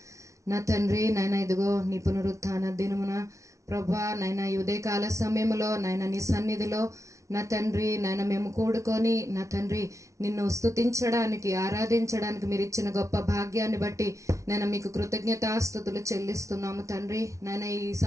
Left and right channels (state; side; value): late; left; 0.14 ms